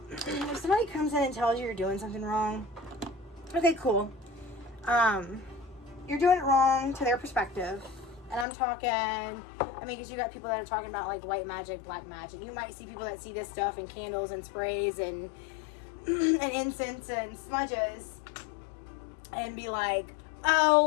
if somebody comes in and tells you you're doing something wrong, okay, cool. You're doing it wrong to their perspective. And I'm talking, I mean, because you got people that are talking about like white magic, black magic. You might see people that see this stuff in candles and sprays and incense and smudges and be like,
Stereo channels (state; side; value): drops out; right; at 8.5 s